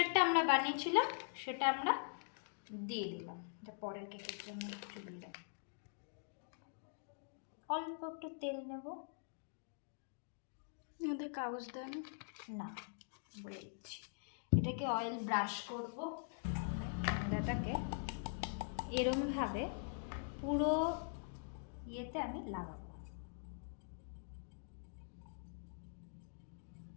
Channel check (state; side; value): silent; right; digital silence